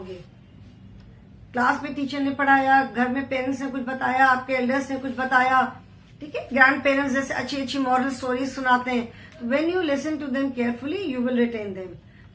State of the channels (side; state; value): both; identical; correlation 1.00